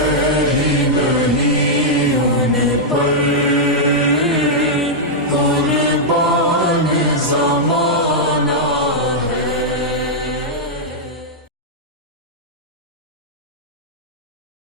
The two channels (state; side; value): normal; both; correlation -0.07